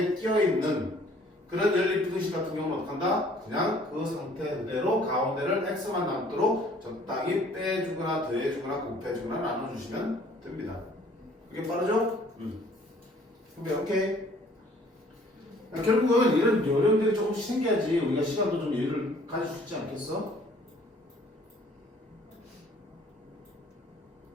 끼어있는 그런 연립부등식 같은 경우는 어떻게 한다? 그냥 그 상태 그대로 가운데를 x만 남도록 적당히 빼주거나 더해주거나 곱해주거나 나눠주시면 됩니다. 이게 빠르죠? 그럼 오케이. 결국은 이런 요령들이 조금씩 생겨야지 우리가 시간도 좀 여유를 가질 수 있지 않겠어?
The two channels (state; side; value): normal; both; correlation 0.57